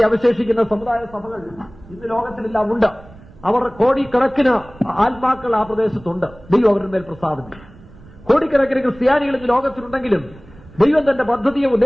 അവശേഷിക്കുന്ന സമുദായ സഭകൾ ഇന്ന് ലോകത്തിലെല്ലാം ഉണ്ട്. അവർ കോടിക്കണക്കിന് ആത്മാക്കൾ ആ പ്രദേശത്തുണ്ട്. ദൈവം അവരുടെ മേൽ പ്രസാദിക്കും. കോടിക്കണക്കിന് ക്രിസ്ത്യാനികൾ ഇന്ന് ലോകത്തിലുണ്ടെങ്കിലും ദൈവം തന്റെ പദ്ധതിയെ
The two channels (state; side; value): noise; right; rumble, 22 dB below the sound